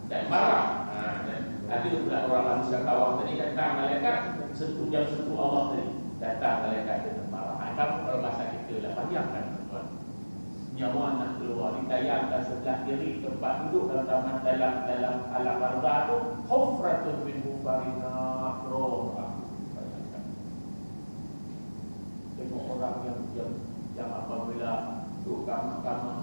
dan marah. Dan ada pula orang manusia kawah tadi datang malaikat sentuh Allah tadi. Datang malaikat dengan marah. Kamu kalau bahasa kita lah, bayangkan tuan-tuan, nyawa nak keluar, ditayangkan sebelah kiri tempat duduk dalam alam barzah tu, hufratun min hufarina roh. Bayangkan tengok orang yang apabila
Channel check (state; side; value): inverted; both; correlation -1.00